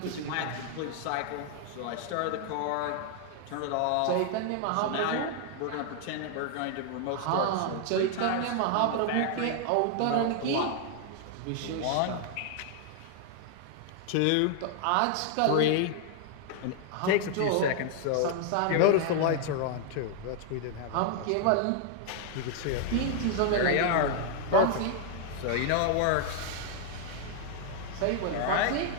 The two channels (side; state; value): both; different; correlation 0.00